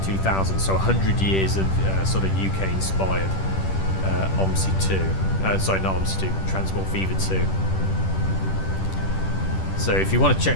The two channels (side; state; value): right; late; 10 ms